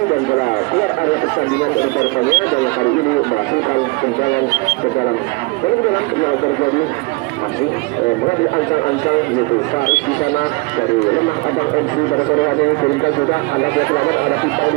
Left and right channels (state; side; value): quieter; left; 25.6 dB